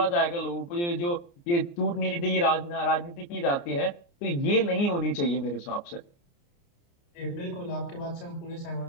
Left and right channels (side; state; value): right; late; 29 ms